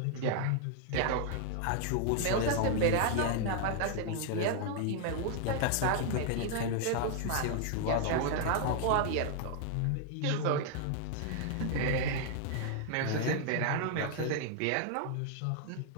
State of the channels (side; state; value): both; different; correlation 0.00